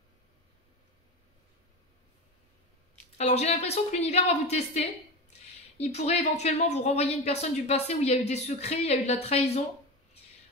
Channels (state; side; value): normal; both; correlation 0.23